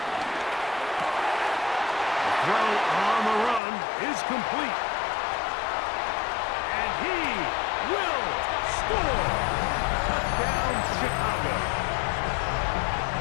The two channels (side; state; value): right; drops out; at 3.6 s